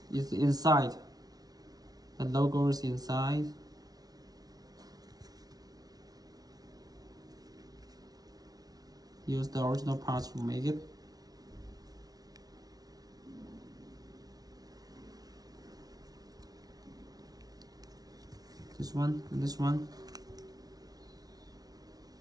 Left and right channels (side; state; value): left; late; 0.19 ms